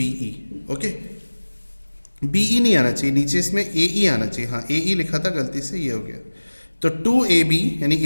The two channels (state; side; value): inverted; both; correlation -1.00